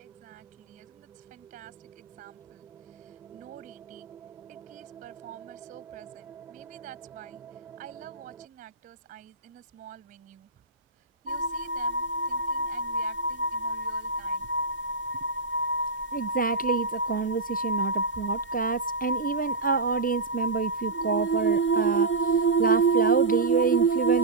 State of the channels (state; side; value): quieter; left; 3.6 dB